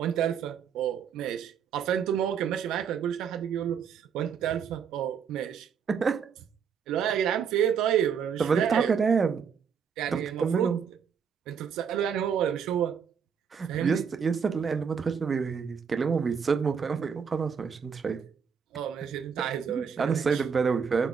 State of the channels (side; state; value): left; quieter; 6.9 dB